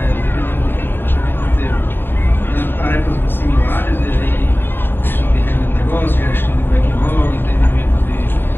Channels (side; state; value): right; late; 0.097 ms